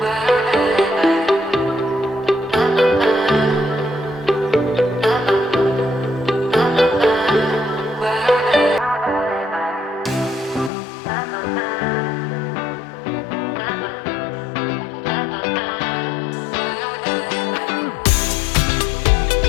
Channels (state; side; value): drops out; right; at 10.7 s